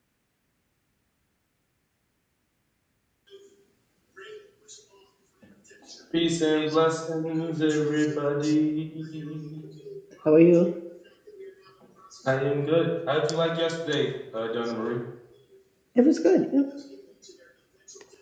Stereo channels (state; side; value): identical; both; correlation 1.00